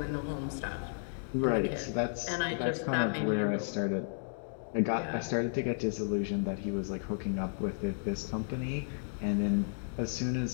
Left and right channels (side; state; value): right; silent; digital silence